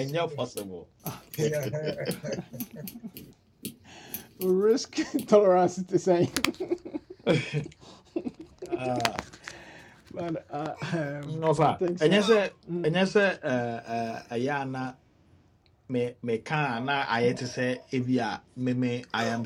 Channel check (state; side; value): identical; both; correlation 1.00